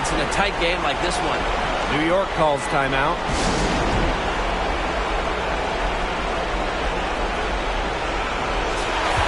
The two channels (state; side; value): identical; both; correlation 1.00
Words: in a tight game like this one. New York calls timeout.